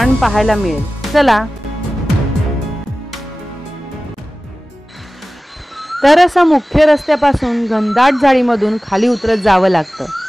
पाहायला मिळेल। चला तर असं मुख्य रस्त्यापासून घनदाट झाडीमधून खाली उतरत जावं लागतं।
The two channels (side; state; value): both; normal; correlation 0.96